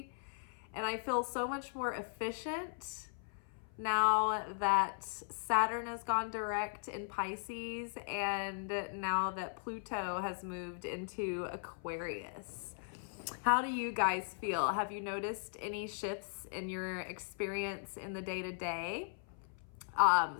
and I feel so much more efficient now that Saturn has gone direct in Pisces and now that Pluto has moved into Aquarius. How do you guys feel? Have you noticed any shifts in your experience in the day-to-day?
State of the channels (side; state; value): right; silent; 52 dB below the other